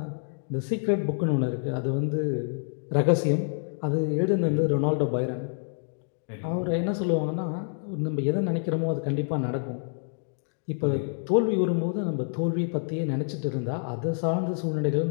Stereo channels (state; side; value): silent; right; digital silence